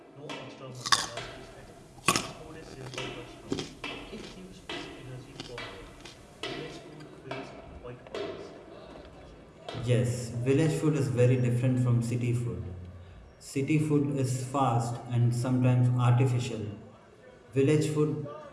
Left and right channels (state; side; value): identical; both; correlation 1.00